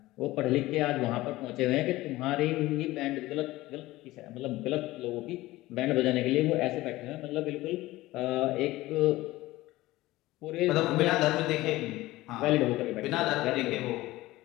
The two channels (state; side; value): quieter; right; 18.0 dB